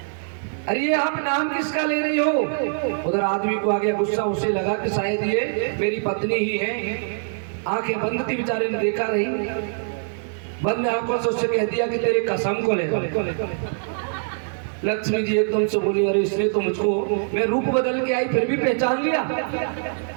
अरे ये आप नाम किसका ले रही हो। उधर आदमी को आ गया गुस्सा, उसे लगा कि शायद ये मेरी पत्नी ही है। आंखें बंद थी, बेचारे ने देखा नहीं, बंद आंखों से उससे कह दिया कि तेरे कसम को ले। लक्ष्मी जी एकदम से बोली अरे इसने तो मुझको, मैं रूप बदल के आई फिर भी पहचान लिया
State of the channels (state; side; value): silent; left; digital silence